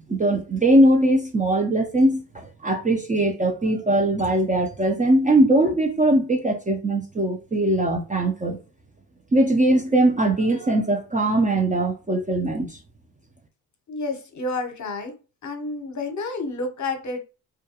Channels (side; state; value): both; normal; correlation 0.56